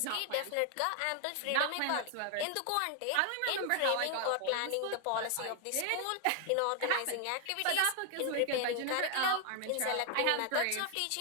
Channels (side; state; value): both; different; correlation 0.00